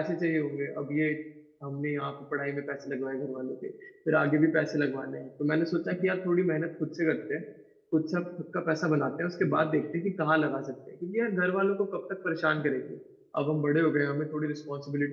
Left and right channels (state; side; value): identical; both; correlation 1.00